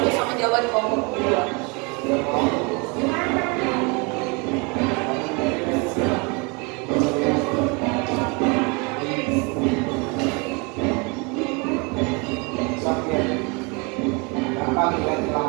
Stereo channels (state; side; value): quieter; left; 30.4 dB